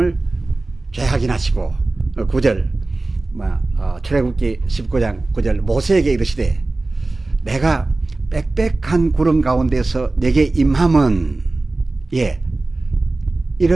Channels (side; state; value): left; quieter; 3.1 dB